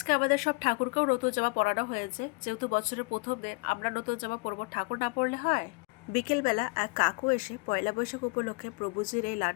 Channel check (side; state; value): right; quieter; 28.8 dB